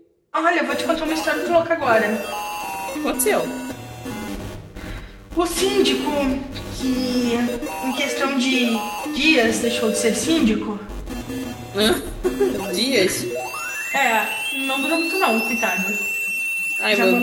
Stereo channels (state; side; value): identical; both; correlation 1.00